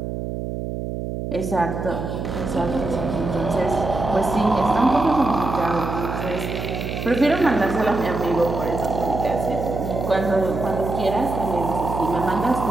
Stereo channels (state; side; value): noise; right; hum, 5 dB below the sound